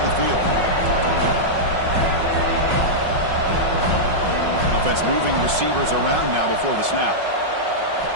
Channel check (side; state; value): left; late; 5.4 ms